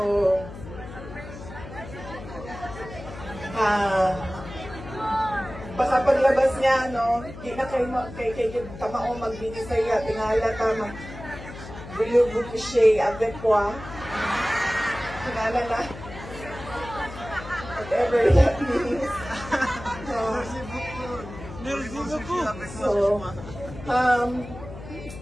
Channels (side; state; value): left; noise; hum, 13 dB below the sound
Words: baka paglabas niya, no, di na kayo kay tamao magbinisaya, tingala tama. Voulez-vous coucher avec moi? Tingala na. Whatever that means. So,